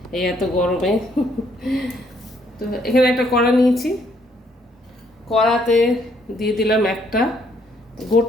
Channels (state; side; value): normal; both; correlation 0.69